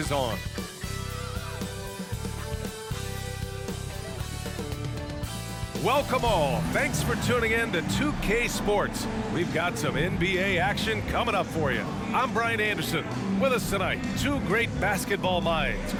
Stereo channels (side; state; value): both; identical; correlation 1.00